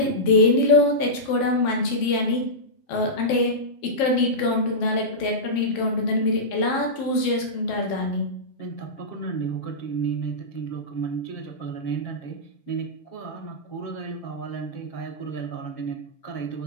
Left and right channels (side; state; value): right; late; 7.5 ms